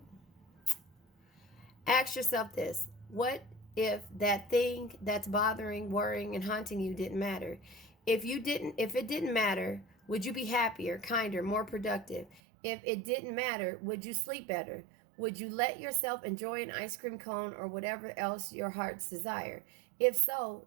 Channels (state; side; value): drops out; left; at 12.4 s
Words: Ask yourself this. What if that thing that's bothering, worrying, and haunting you didn't matter? If it didn't matter, would you be happier, kinder, more productive? If it didn't matter, would you sleep better? Would you let yourself enjoy an ice cream cone or whatever else your heart's desire? If so,